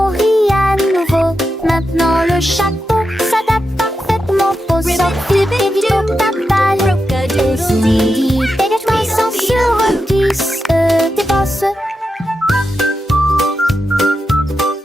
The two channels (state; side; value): normal; both; correlation 0.88